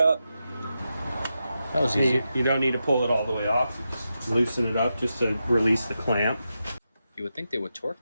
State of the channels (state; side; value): inverted; both; correlation -0.88